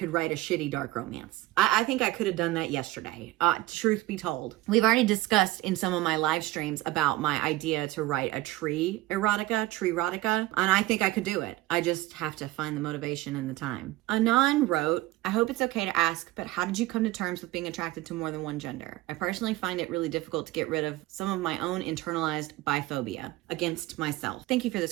write a shitty dark romance. I think I could have done that yesterday. Truth be told, we've already discussed in some of my live streams about my idea to write a tree erotica, and I think I could do it. I just have to find the motivation and the time. Anon wrote, I hope it's okay to ask, but how did you come to terms with being attracted to more than one gender? I personally find it really difficult to get rid of some of my own internalized biphobia against myself. Thank you for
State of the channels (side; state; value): left; quieter; 17.7 dB